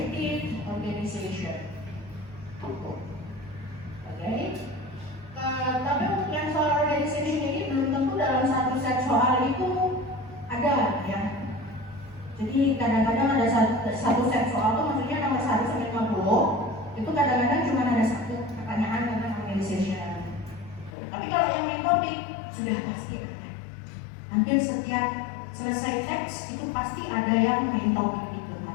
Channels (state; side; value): drops out; right; at 21.0 s